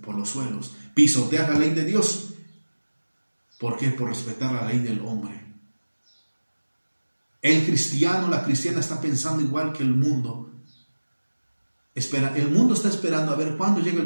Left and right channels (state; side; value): inverted; both; correlation -1.00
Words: Por los suelos. Pisotear la ley de Dios. ¿Por qué? Por respetar la ley del hombre. El cristiano, la cristiana está pensando igual que el mundo. El mundo está esperando a ver cuándo llega el